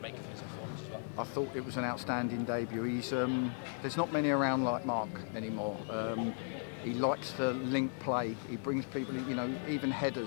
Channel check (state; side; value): silent; right; 54 dB below the other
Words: make of his performance as well? I thought it was an outstanding debut. There's not many around like Mark anymore. He likes to link play. He brings people in, even